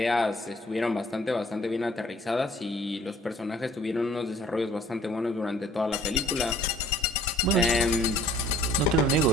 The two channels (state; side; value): normal; both; correlation 0.54